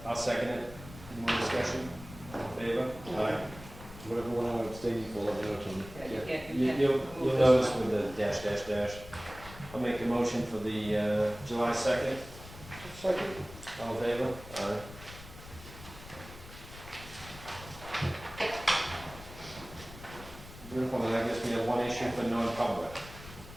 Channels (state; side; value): noise; left; rumble, 16 dB below the sound